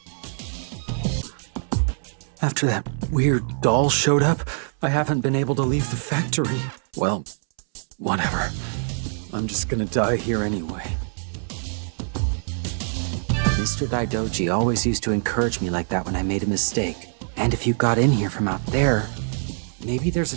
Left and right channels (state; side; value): silent; left; 63 dB below the other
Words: After that weird doll showed up, I haven't been able to leave the factory. Well, whatever. I'm just gonna die here anyway. Mr. Daidoji always used to encourage me like that when I made a mistake. And if you got in here from out there, maybe there's a